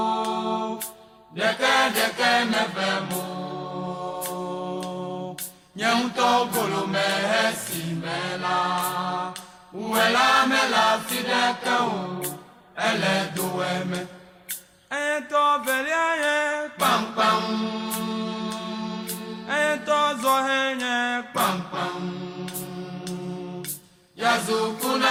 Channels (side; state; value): both; identical; correlation 1.00